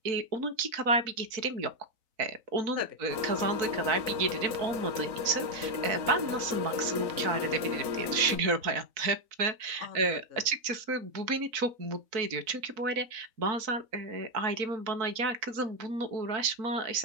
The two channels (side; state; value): left; late; 4.0 ms